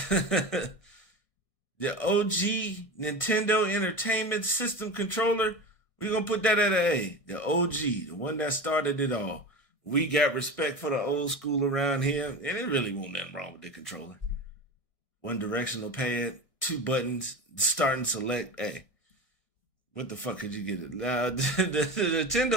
The OG Nintendo Entertainment System controller, we're going to put that at an A. The OG, the one that started it all. We got respect for the old school around here, and it really wasn't nothing wrong with the controller. One directional pad, 2 buttons, start and select. Hey, what the fuck could you get it? The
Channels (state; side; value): late; right; 1.6 ms